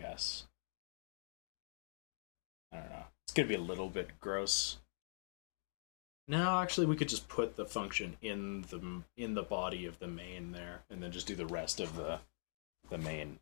I don't know. It's going to be a little bit gross. No, actually, we could just put the function in the body of the main there, and then just do the rest of the main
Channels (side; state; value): right; silent; digital silence